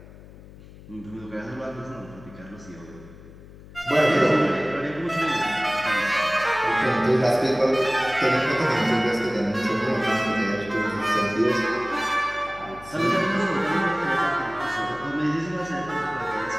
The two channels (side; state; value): left; noise; hum, 19 dB below the sound